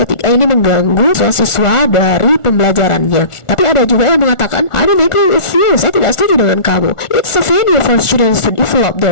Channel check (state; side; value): late; right; 1.4 ms